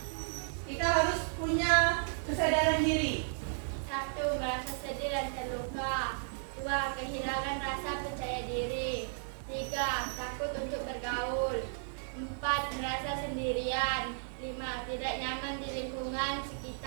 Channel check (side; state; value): left; silent; digital silence